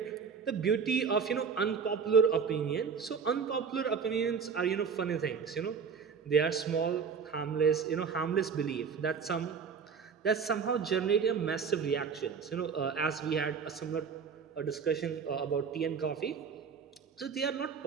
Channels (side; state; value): left; quieter; 6.1 dB